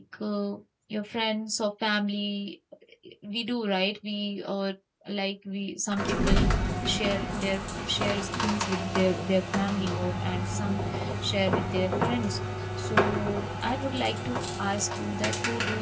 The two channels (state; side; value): identical; both; correlation 1.00